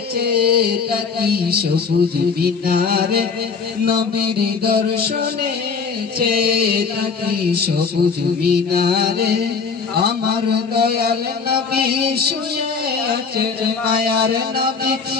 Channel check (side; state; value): right; quieter; 5.3 dB